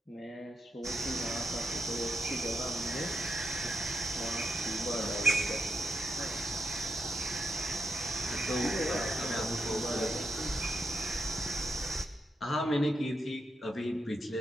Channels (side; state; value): both; normal; correlation 0.84